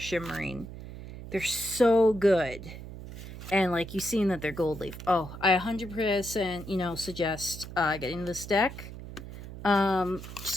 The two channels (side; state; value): right; noise; hum, 12 dB below the sound